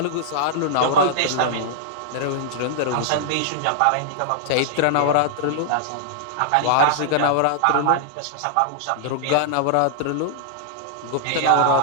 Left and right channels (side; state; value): both; different; correlation -0.01